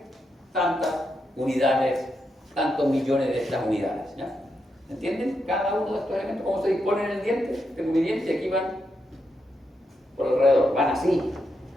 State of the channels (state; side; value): normal; both; correlation 0.83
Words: tantas unidades, tantos millones de estas unidades. ¿Ya? ¿Entienden? Cada uno de estos elementos, cómo se disponen en el diente. Tengo mi diente y aquí van por alrededor. Van así.